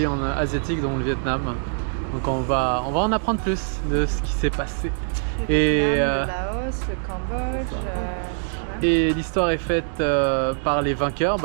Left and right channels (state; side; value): silent; left; digital silence